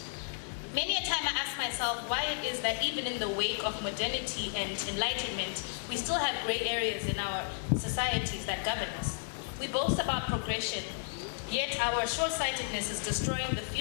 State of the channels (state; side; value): silent; right; digital silence